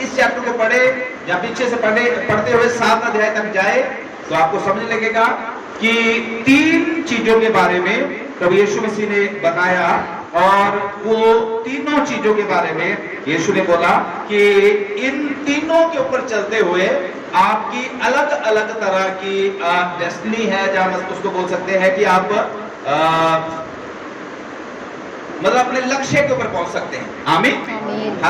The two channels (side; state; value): both; identical; correlation 1.00